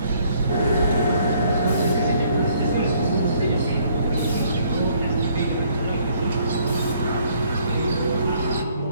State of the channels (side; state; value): both; inverted; correlation -0.64